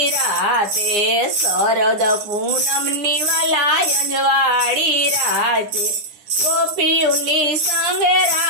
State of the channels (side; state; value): left; late; 9.7 ms